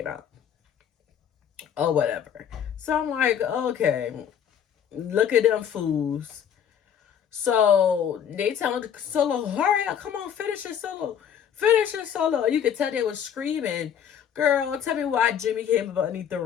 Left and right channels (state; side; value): quieter; right; 8.6 dB